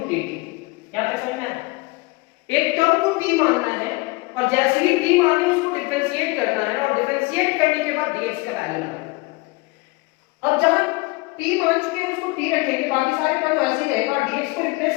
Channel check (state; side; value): quieter; right; 24.5 dB